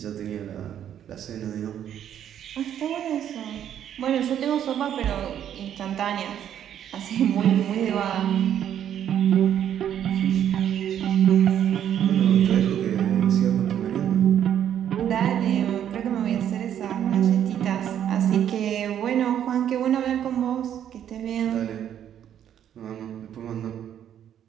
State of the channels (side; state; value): left; quieter; 10.0 dB